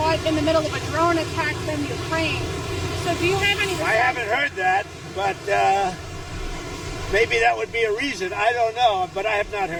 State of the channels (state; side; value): identical; both; correlation 1.00